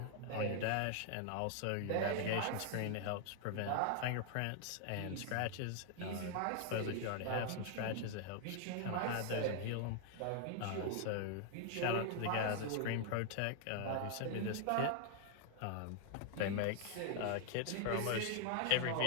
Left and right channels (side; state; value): both; different; correlation 0.00